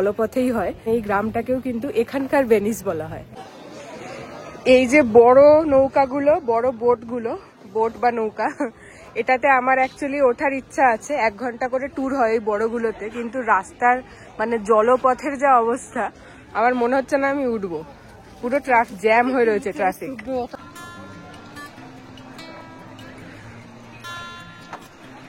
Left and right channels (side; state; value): both; identical; correlation 1.00